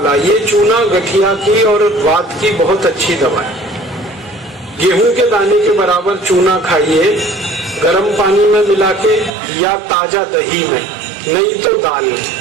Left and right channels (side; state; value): left; drops out; at 9.3 s